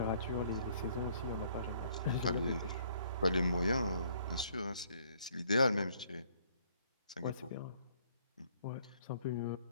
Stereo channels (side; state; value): both; inverted; correlation -0.63